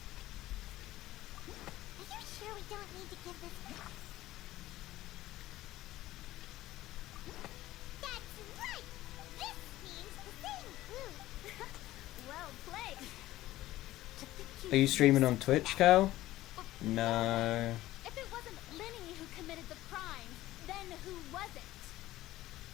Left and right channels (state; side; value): quieter; right; 15.9 dB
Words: Are you sure we don't need to give this... That's right! This means the thing! Well played. Are you streaming on Twitch, Cal? No. If it wasn't Linny who committed the crime, then who was it?